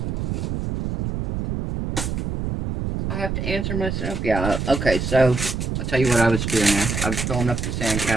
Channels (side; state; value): right; noise; rumble, 2 dB below the sound